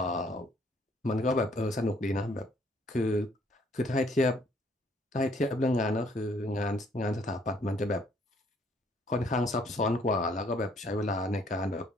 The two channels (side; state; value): both; normal; correlation 0.64